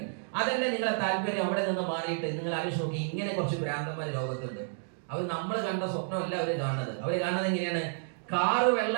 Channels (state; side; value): silent; left; digital silence